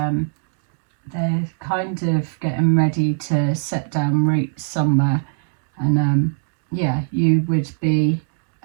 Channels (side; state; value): left; silent; digital silence